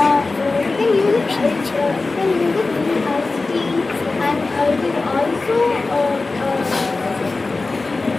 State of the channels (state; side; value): quieter; right; 3.6 dB